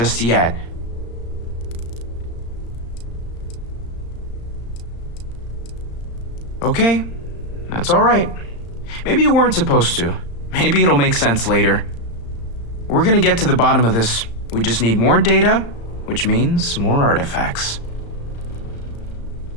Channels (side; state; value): right; late; 35 ms